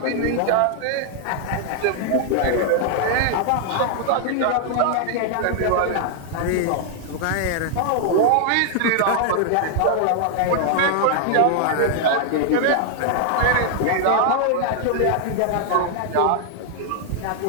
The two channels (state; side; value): different; both; correlation 0.00